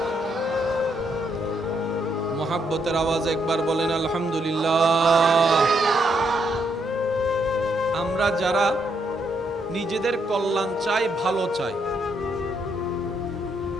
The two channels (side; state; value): both; normal; correlation 0.76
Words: মহব্বতের আওয়াজ একবার বলেন আলহামদুলিল্লাহ। আমরা যারা নিজেদের কল্যাণ চাই, ভালো চাই,